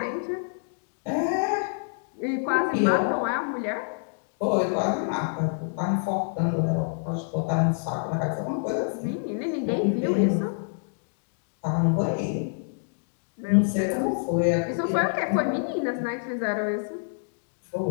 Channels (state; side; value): silent; right; digital silence